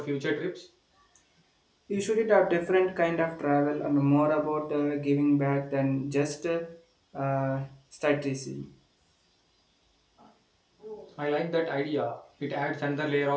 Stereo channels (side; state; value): both; identical; correlation 1.00